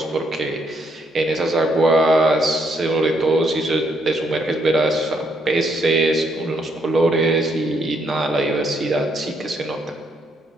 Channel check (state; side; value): normal; both; correlation 0.73